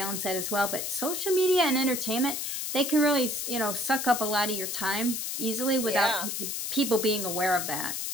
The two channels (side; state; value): left; noise; hiss, 3 dB below the sound